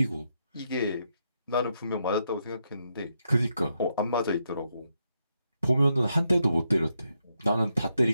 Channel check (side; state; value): both; inverted; correlation -0.81